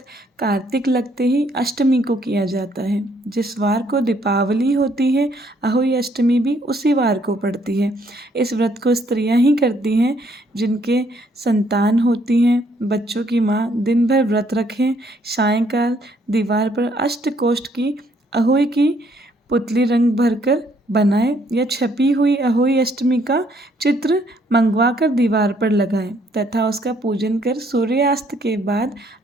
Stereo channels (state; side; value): normal; both; correlation 0.67